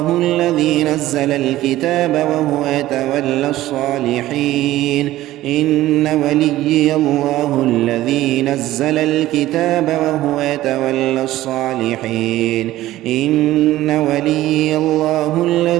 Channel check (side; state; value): left; quieter; 15.4 dB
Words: الذي نزل الكتاب وهو يتولى الصالحين. إن ولي الله الذي نزل الكتاب وهو يتولى الصالحين. إن ولي الله